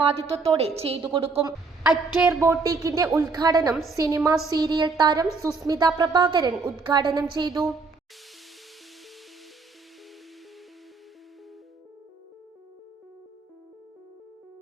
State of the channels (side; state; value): left; quieter; 4.2 dB